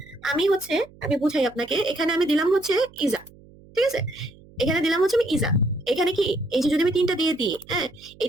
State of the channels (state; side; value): noise; right; hum, 24 dB below the sound